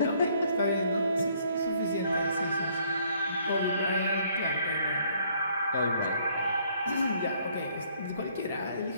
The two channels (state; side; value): inverted; both; correlation -0.64